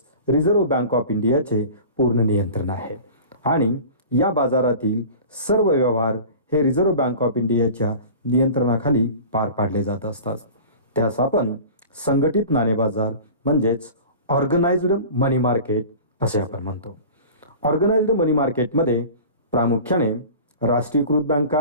रिझर्व्ह बँक ऑफ इंडियाचे पूर्ण नियंत्रण आहे आणि या बाजारातील सर्व व्यवहार हे रिझर्व्ह बँक ऑफ इंडियाच्या नियंत्रणाखाली पार पाडले जात असतात. त्यास आपण संघटित नाणे बाजार म्हणजेच ऑर्गनाइज्ड मनी मार्केट असे आपण म्हणतो. ऑर्गनाइज्ड मनी मार्केटमध्ये प्रामुख्याने राष्ट्रीयकृत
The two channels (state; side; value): inverted; both; correlation -0.39